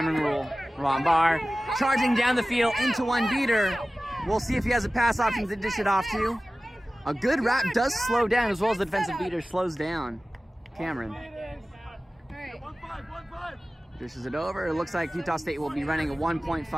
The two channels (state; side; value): normal; both; correlation 0.96